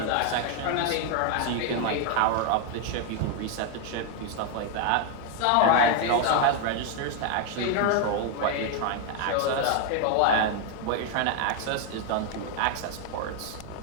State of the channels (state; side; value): different; both; correlation 0.00